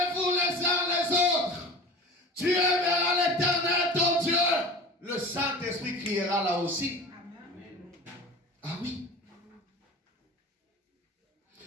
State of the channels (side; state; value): both; normal; correlation 0.36